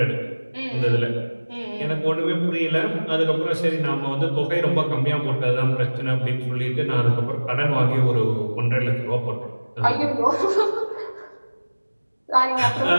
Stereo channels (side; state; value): both; inverted; correlation -1.00